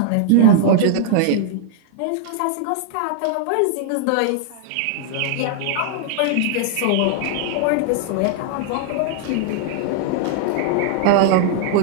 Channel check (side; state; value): both; different; correlation -0.01